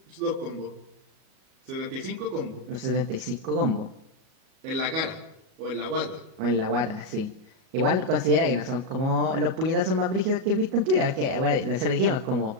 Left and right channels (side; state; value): left; late; 37 ms